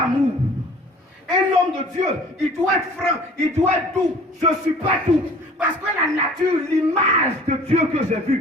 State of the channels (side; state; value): both; normal; correlation 0.48